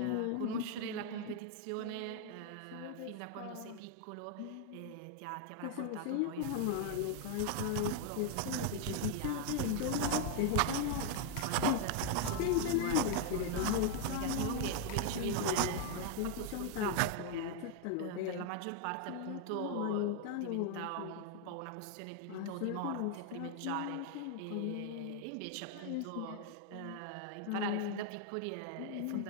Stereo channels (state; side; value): different; both; correlation 0.00